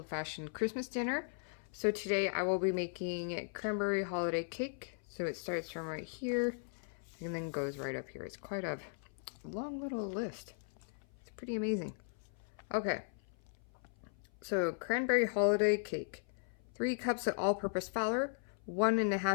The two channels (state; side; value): silent; right; 53 dB below the other